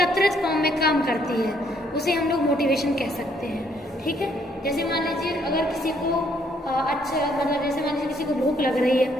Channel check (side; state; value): both; normal; correlation 0.68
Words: फॉर्म में काम करती है, उसे हम लोग मोटिवेशन कह सकते हैं, ठीक है। जैसे मान लीजिए अगर किसी को जैसे मान लीजिए किसी को भूख लग रही है,